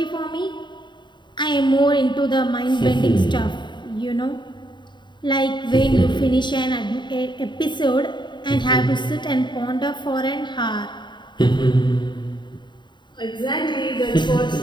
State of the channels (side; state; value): right; late; 0.22 ms